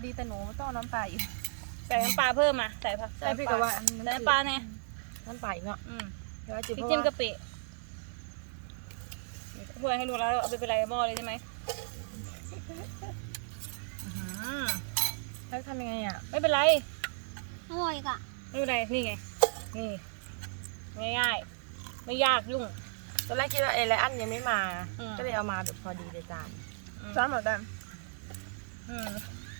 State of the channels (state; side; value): silent; left; digital silence